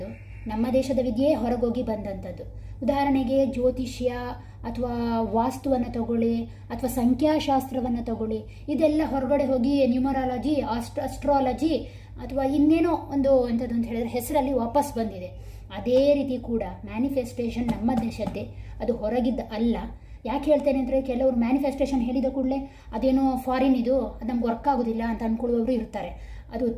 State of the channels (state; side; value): identical; both; correlation 1.00